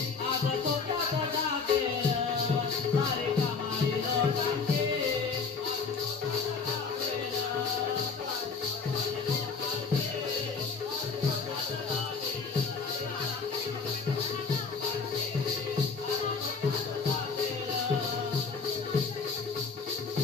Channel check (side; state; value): right; quieter; 5.0 dB